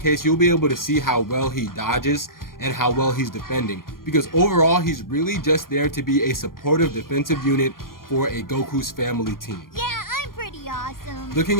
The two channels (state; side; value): late; right; 0.91 ms